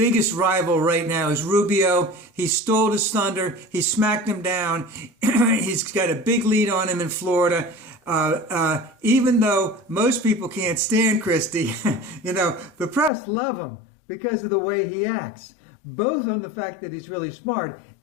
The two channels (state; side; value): drops out; right; at 13.1 s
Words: rival right now is Rubio. He stole his thunder. He smacked him down. He's got a big lead on him in Florida. Even though most people can't stand Christie, you know, the press love him because of the way he acts. Both on the fact that he's really smart